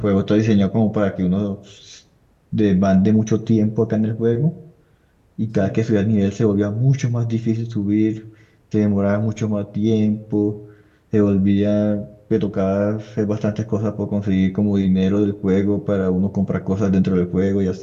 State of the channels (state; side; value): identical; both; correlation 1.00